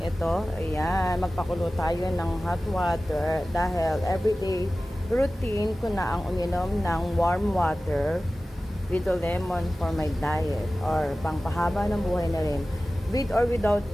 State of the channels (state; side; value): normal; both; correlation 0.96